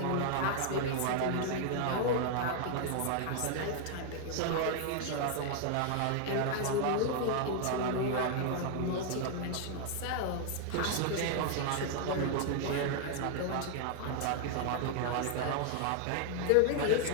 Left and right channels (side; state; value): both; different; correlation 0.00